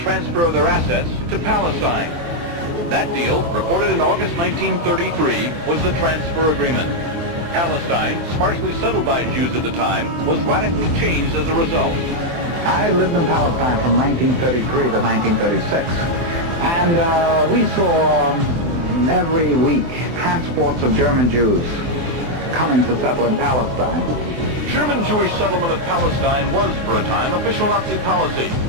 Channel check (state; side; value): late; left; 24 ms